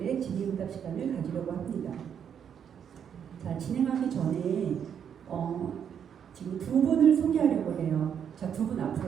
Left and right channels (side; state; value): left; quieter; 8.2 dB